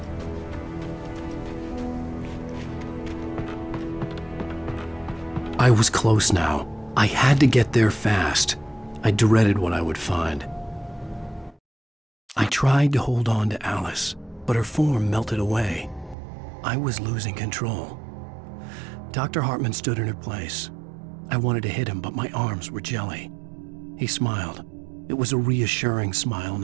I was close now. I had to get there fast. I dreaded what I would find. I tried to hold on to Alice, but her form melted away. I was losing control. Dr. Hartman stood in her place. I wanted to hit him, but my arms were jelly. He smiled. It was a reassuring smile,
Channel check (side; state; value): left; drops out; at 16.2 s